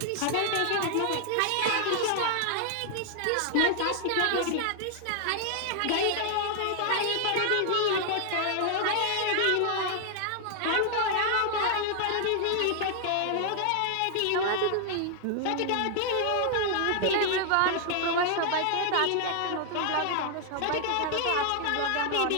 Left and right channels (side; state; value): both; different; correlation 0.00